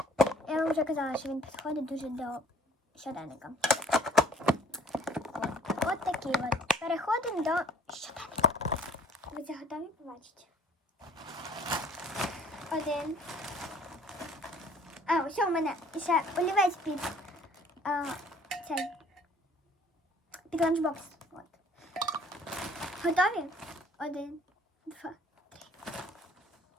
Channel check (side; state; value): both; normal; correlation 0.55